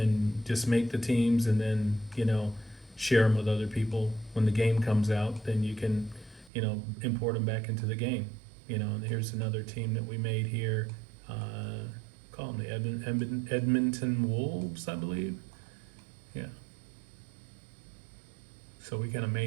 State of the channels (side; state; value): left; drops out; at 6.5 s